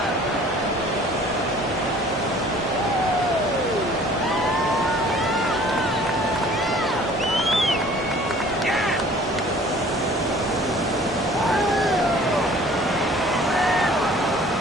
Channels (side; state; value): both; normal; correlation 0.51